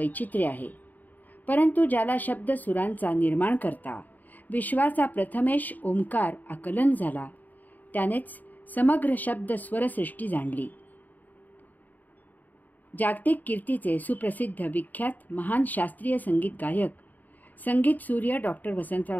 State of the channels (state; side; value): late; right; 0.083 ms